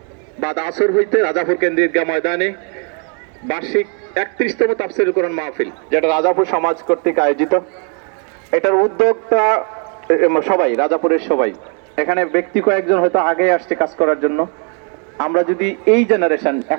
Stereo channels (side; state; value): left; quieter; 39.3 dB